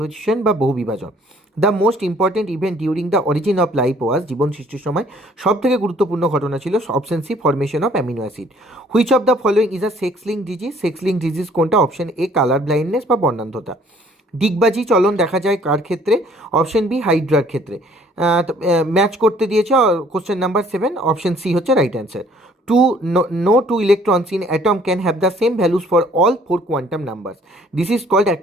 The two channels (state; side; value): normal; both; correlation 0.58